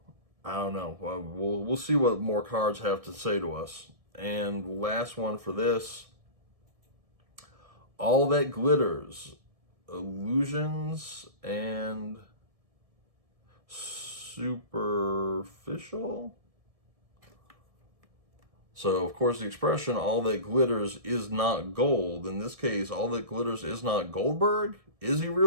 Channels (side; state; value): left; late; 1.7 ms